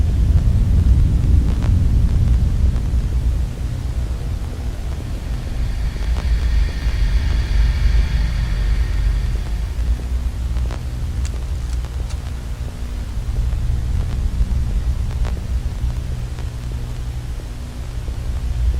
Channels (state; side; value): identical; both; correlation 1.00